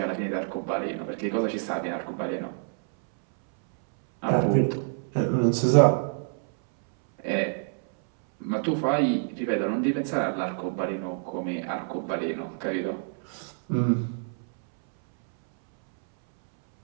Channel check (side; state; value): left; silent; 60 dB below the other